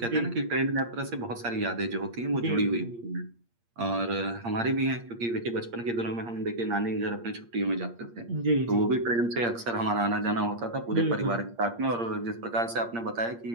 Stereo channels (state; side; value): late; left; 8.6 ms